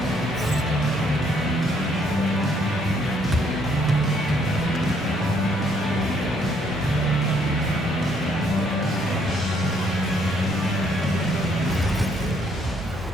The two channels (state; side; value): normal; both; correlation 0.68